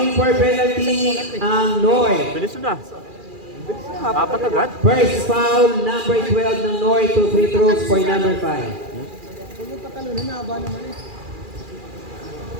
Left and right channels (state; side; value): late; left; 2.4 ms